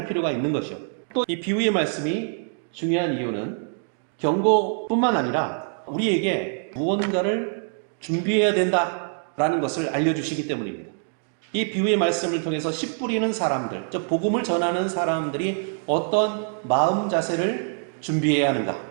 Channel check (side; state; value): left; silent; 62 dB below the other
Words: 필요가 있는 것이요. 또 이 비유의 말씀이 중요한 이유는 경고뿐만 아니라 우리에게 무언가를 준비해야 된다라는 것을 알려주시기 때문입니다. 이 비유의 말씀을 통해서 씨 뿌리는 사람들, 즉 복음을 전하는 사람들이 어떤 마음 자세를 준비해야 하는가?